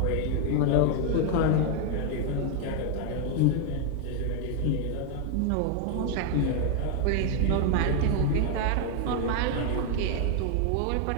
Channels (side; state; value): both; different; correlation 0.00